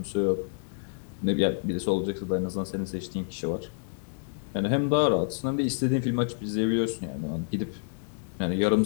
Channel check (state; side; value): silent; right; digital silence